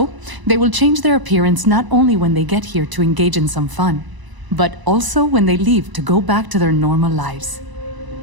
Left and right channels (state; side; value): late; left; 1.0 ms